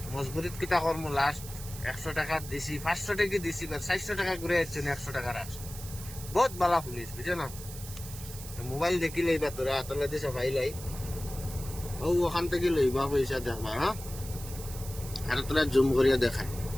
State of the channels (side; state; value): right; noise; hiss, 13 dB below the sound